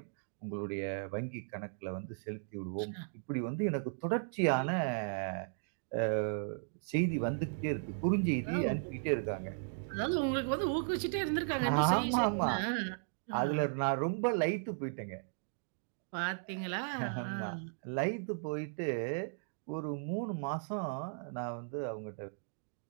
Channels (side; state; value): left; silent; digital silence